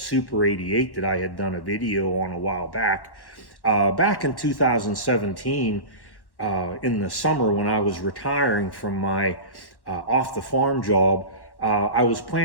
88 that I had done a video on a while back. Back in 2017, in the summer when I was retiring from my off the farm job, I was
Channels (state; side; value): late; right; 1.1 ms